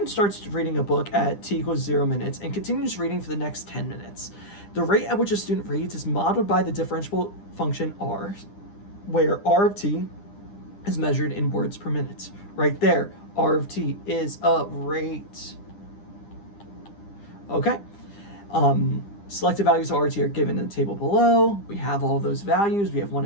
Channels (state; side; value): late; right; 9.9 ms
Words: starts reading a book at t equals 0 minutes and continues reading for the next 10 minutes. The rate at which a student reads is modeled by the differentiable function r, where r of t is measured in words per minute. Right there, r of t is a rate. Okay, selected values of r of t are given in the table below. We have all those values. We have 1